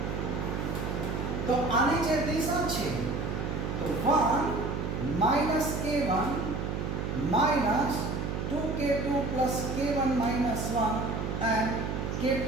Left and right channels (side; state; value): right; noise; hum, 3 dB below the sound